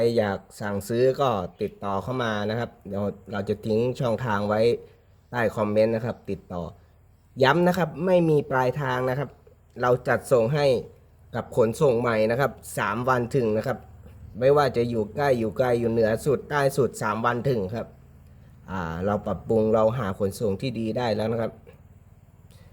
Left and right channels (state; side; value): identical; both; correlation 1.00